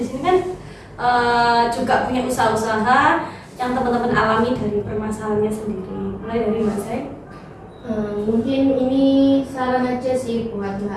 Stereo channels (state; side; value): identical; both; correlation 1.00